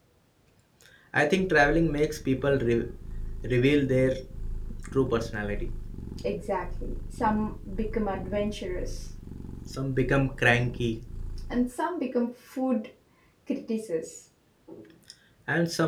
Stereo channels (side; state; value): both; identical; correlation 1.00